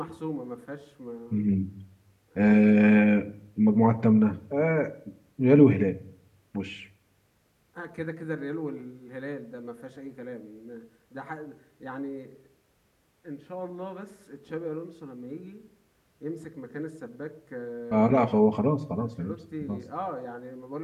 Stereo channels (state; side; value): identical; both; correlation 1.00